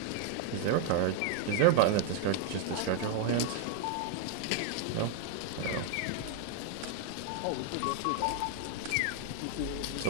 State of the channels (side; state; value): both; different; correlation 0.01